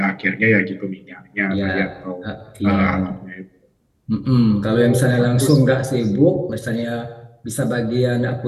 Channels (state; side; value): identical; both; correlation 1.00